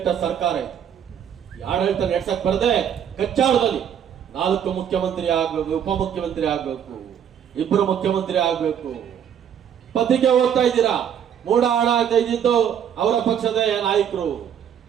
ಸರ್ಕಾರ ಇದು. ಆಡಳಿತ ನಡೆಸಕ್ ಬರದೆ ಕಚ್ಚಾಳದಲ್ಲಿ 4 ಮುಖ್ಯಮಂತ್ರಿ ಆಗ್ಬೇಕು, ಉಪಮುಖ್ಯಮಂತ್ರಿ ಆಗ್ಬೇಕು, 2 ಮುಖ್ಯಮಂತ್ರಿ ಆಗ್ಬೇಕು. ಪತ್ರಿಕೆ ಓದ್ತಾ ಇದ್ದೀರಾ, ಮೂಢ ಹಣ ತೆಗೆದಿದ್ದು ಅವರ ಪಕ್ಷದ ನಾಯಕರು.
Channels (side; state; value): left; quieter; 8.8 dB